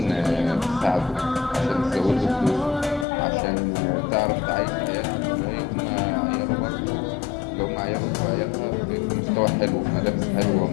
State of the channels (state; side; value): drops out; right; at 3.1 s